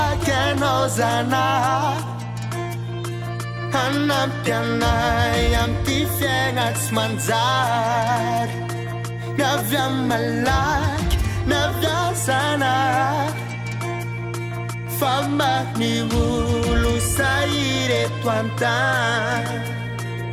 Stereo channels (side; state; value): both; identical; correlation 1.00